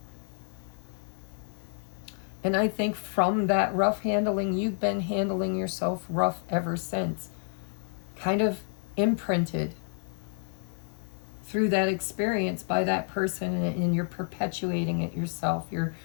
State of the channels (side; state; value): right; silent; 56 dB below the other